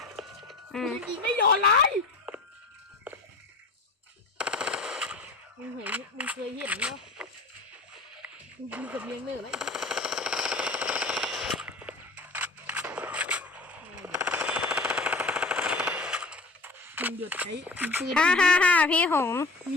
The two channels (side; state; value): right; quieter; 3.3 dB